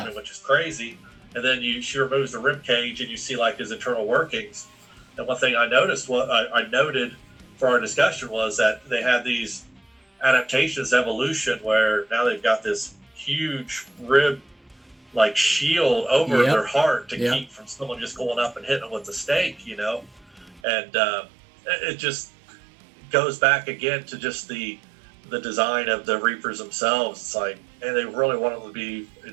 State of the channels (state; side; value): drops out; left; at 20.6 s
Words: him, which is crazy. And then she removes the rib cage, and you see his internal workings. And one thing I noticed, I noted for our discussion, was that they had these adaptations, evolution, where now they've got this huge rib shield over their heart to keep from someone just going up and hitting them with the stake, and it just goes back again to just the design of the Reapers themselves. It's and they really want them to be